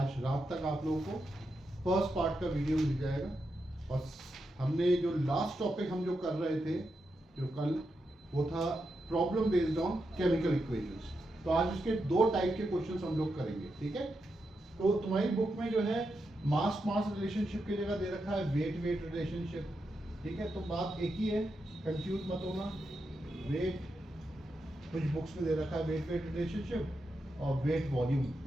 रात तक आप लोगों को फर्स्ट पार्ट का वीडियो मिल जाएगा। और हमने जो लास्ट टॉपिक हम जो कर रहे थे जो कल, वो था problem based on chemical equations. तो आज इसके दो टाइप के क्वेश्चंस हम लोग करेंगे, ठीक है। तो तुम्हारी बुक में जो है मास मास रिलेशनशिप की जगह दे रखा है वेट वेट रिलेशनशिप, ठीक है। तो बात एक ही है, कंफ्यूज मत होना। वेट कुछ बुक्स में दे रखा है वेट वेट रिलेशनशिप और वेट वॉल्यूम,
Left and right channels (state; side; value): normal; both; correlation 0.86